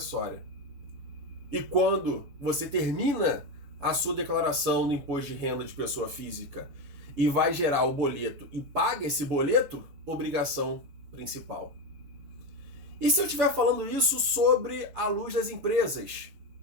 E quando você termina a sua declaração do imposto de renda de pessoa física e vai gerar o boleto e paga esse boleto, obrigação principal. E se eu estiver falando isso sobre a luz das empresas?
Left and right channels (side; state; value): left; late; 7.0 ms